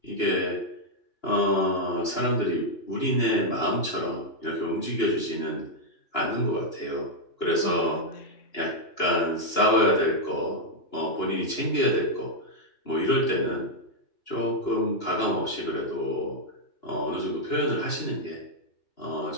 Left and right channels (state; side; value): late; right; 2.9 ms